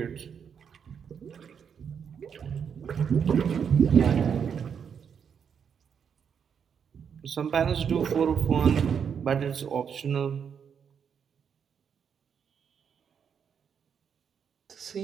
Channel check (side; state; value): left; quieter; 7.2 dB